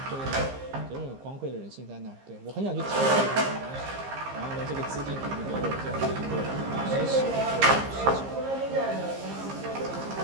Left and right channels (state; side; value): late; left; 15 ms